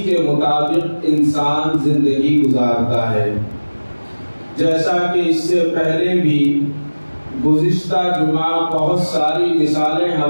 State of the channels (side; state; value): both; inverted; correlation -1.00